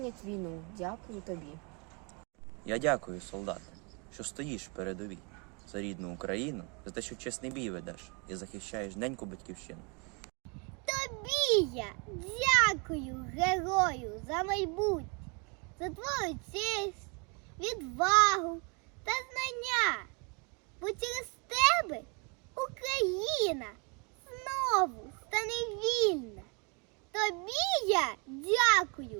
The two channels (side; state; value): left; quieter; 32.8 dB